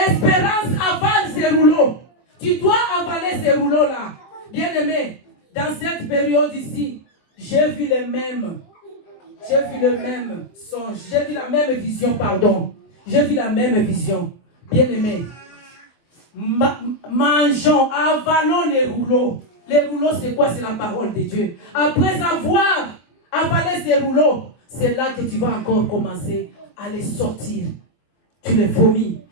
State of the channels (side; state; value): right; late; 23 ms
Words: avale ces rouleaux. Tu dois avaler ces rouleaux-là. Bien-aimé, dans cette période ici, j'ai vu le même songe, j'ai vu la même vision, pardon. J'ai vu la même vision. Bien-aimé, mangeons, avalons les rouleaux. Les rouleaux, c'est quoi? C'est la parole de Dieu. Après avoir avalé ces rouleaux, c'est là que tu vas encore commencer à les sortir. Tu les vomis.